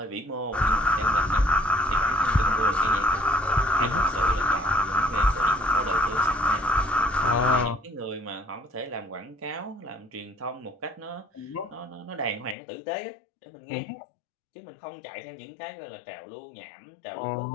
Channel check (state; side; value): drops out; right; at 12.6 s